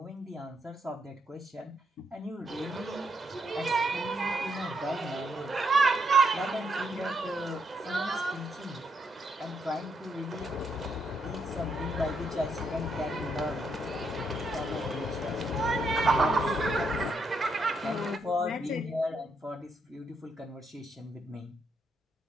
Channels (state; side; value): normal; both; correlation 0.77